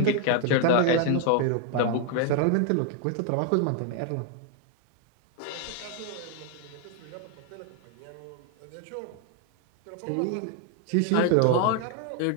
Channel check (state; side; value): different; both; correlation 0.01